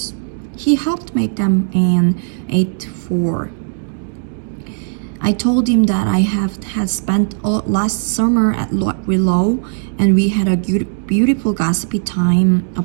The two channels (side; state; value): left; silent; digital silence